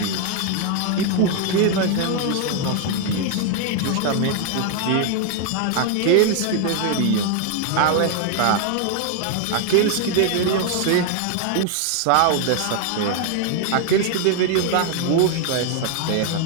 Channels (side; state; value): both; different; correlation 0.00